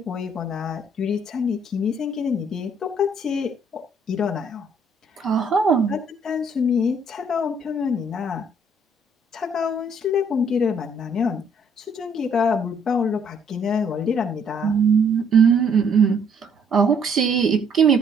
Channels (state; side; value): normal; both; correlation 0.65